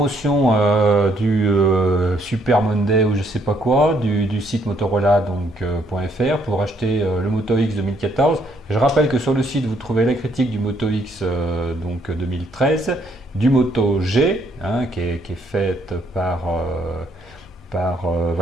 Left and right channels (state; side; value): normal; both; correlation 0.69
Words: du Super Monday ou je sais pas quoi du site Motorola .fr pour acheter le Moto X 2014. Je rappelle que sur le site vous trouvez la critique du Moto X 2013, du Moto G qui est faite par